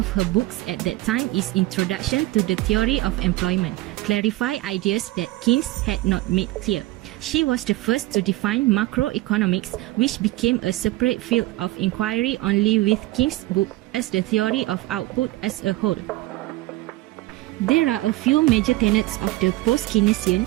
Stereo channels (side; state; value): left; quieter; 18.4 dB